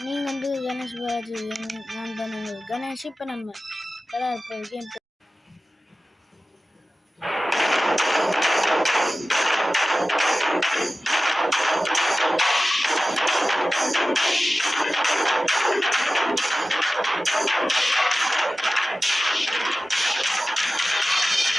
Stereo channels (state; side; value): normal; both; correlation 0.95